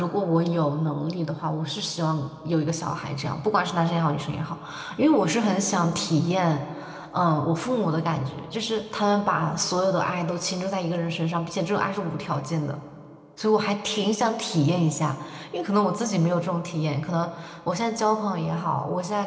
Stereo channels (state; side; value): identical; both; correlation 1.00